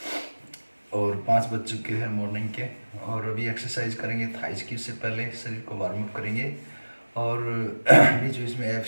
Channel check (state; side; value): inverted; both; correlation -1.00